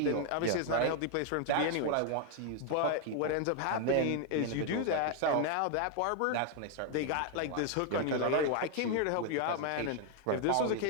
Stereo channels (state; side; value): different; both; correlation 0.00